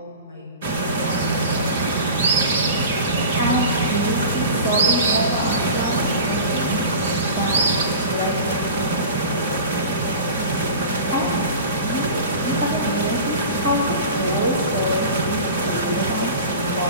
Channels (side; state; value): both; inverted; correlation -0.36